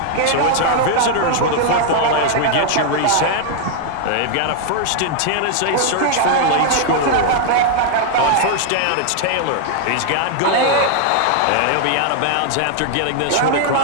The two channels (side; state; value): both; different; correlation 0.00